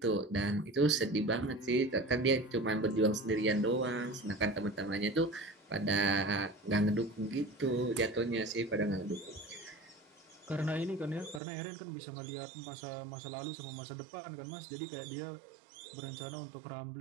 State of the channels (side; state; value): left; drops out; at 11.4 s